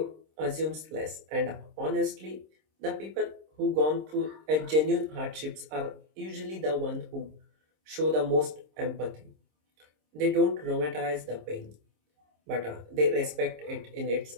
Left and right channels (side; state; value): left; late; 26 ms